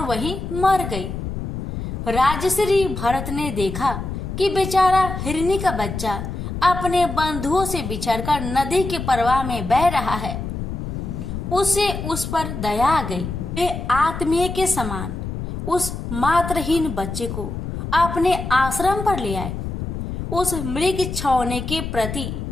वहीं मर गई। राजश्री भरत ने देखा कि बेचारा हिरनी का बच्चा अपने बंधुओं से बिछड़कर नदी के प्रवाह में बह रहा है। उसे उस पर दया आ गई। वे आत्मीय के समान उस मात्रहीन बच्चे को अपने आश्रम पर ले आए। उस मृग छौने के प्रति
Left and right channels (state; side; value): noise; left; rumble, 6 dB below the sound